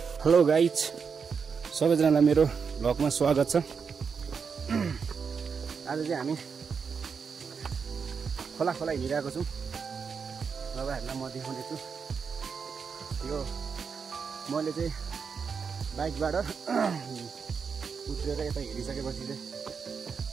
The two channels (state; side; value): quieter; left; 5.9 dB